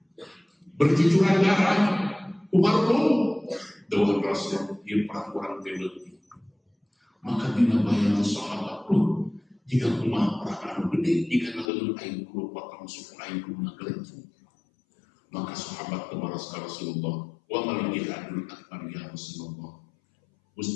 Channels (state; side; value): drops out; right; at 11.7 s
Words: berjujuran darah Umar pun dawuh Rasul ieu perang urang teh leutik maka dina bayangan sahabat pun jika kumaha perang anu gede jika naleun aing kudu potong suku aing kudu nagelencung maka sahabat kebaras ka Rasulullah wa mal jihadul akbar ya Rasulullah